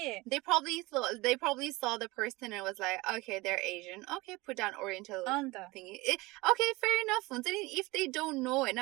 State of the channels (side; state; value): left; quieter; 22.2 dB